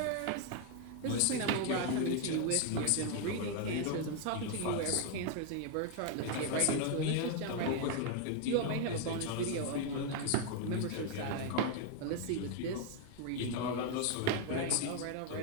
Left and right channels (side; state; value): both; different; correlation 0.01